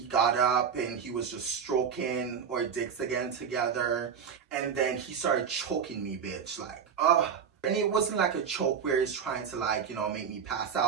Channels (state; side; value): quieter; left; 7.1 dB